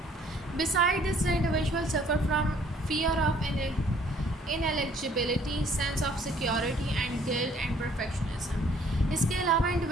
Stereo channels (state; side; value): normal; both; correlation 0.60